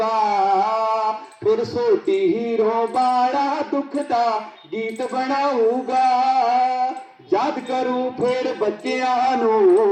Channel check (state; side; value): identical; both; correlation 1.00